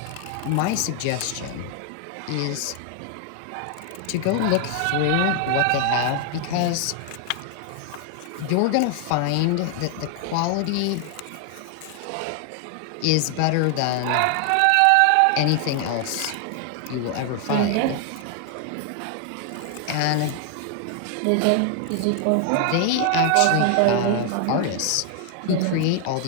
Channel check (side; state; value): both; different; correlation 0.00